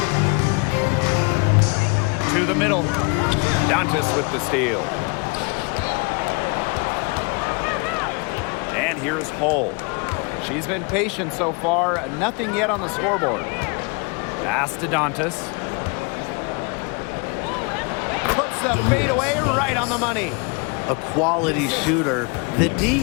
To the middle. Dantas with the steal. And here's Hull. She's been patient so far. Nothing yet on the scoreboard. Pass to Dantas. Puts the fadeaway right on the money. A quality shooter. The D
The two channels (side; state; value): right; quieter; 31.5 dB